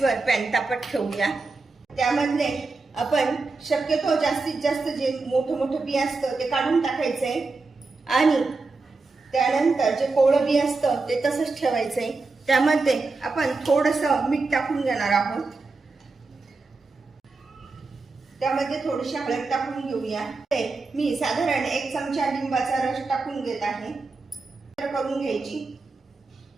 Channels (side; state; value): left; quieter; 3.8 dB